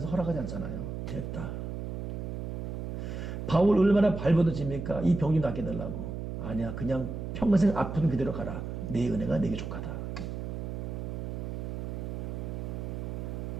허락하지 않잖아요. 됐다. 바울 얼마나 발버둥칩니까? 이 병 좀 낫게 해달라고. 아니야. 그냥 평생 아픈 그대로 가라. 내 은혜가 내게 족하다.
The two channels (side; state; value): right; noise; hum, 5 dB below the sound